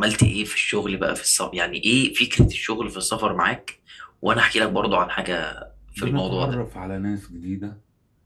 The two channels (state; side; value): identical; both; correlation 1.00